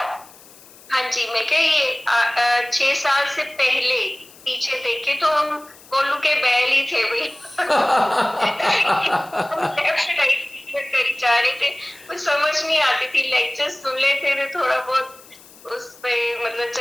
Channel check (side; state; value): left; noise; hiss, 23 dB below the sound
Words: हाँ जी, मैं क्या ये 6 साल से पहले पीछे देखे तो हम कोलू के बैल ही थे भाई। लेफ्ट राइट करी जा रहे थे, कुछ समझ नहीं आती थी, लेक्चर्स सुन लेते थे, थोड़ा बहुत उस पे मतलब